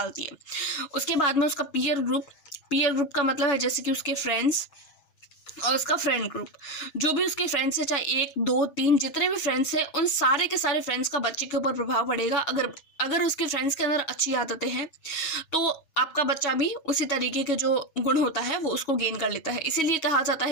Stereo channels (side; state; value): right; late; 6.2 ms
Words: है। उसके बाद में उसका पीयर ग्रुप का मतलब है जैसे कि उसके फ्रेंड्स और उसका फ्रेंड ग्रुप, जो भी उसके फ्रेंड्स है, चाहे 1, 2, 3 जितने भी फ्रेंड्स हैं, उन सारे के सारे फ्रेंड्स का बच्चे के ऊपर प्रभाव पड़ेगा। अगर उसके फ्रेंड्स के अंदर अच्छी आदतें हैं तो आपका बच्चा भी उसी तरीके के जो गुण होता है वो उसको गेन कर लेता है। इसीलिए कहा जाता